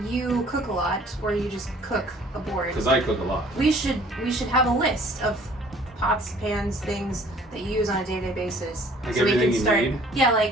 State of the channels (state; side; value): normal; both; correlation 0.55